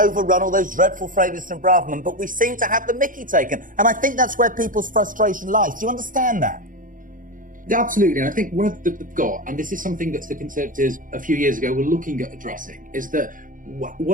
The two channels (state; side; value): late; left; 0.39 ms